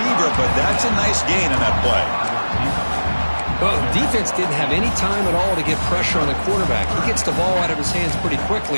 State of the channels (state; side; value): inverted; both; correlation -1.00